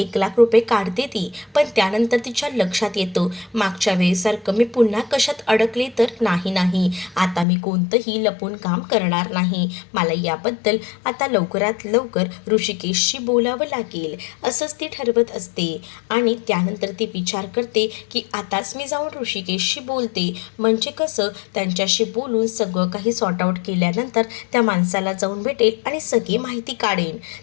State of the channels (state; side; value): drops out; right; at 7.5 s